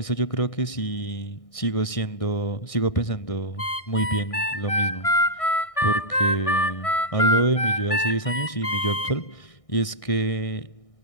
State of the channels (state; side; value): late; right; 1.6 ms